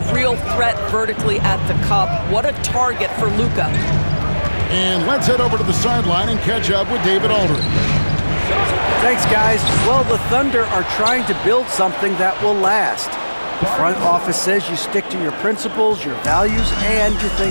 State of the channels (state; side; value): inverted; both; correlation -1.00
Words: real threat vertically at the cup. What a target for Luka. And let's head over to the sideline and catch up with David Aldridge. Thanks, guys. Well, the Thunder are trying to build something that will last. The front office says you stick to your principles, your values, and you